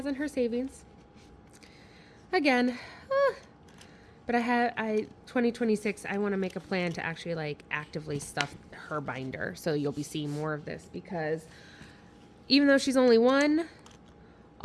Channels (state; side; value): identical; both; correlation 1.00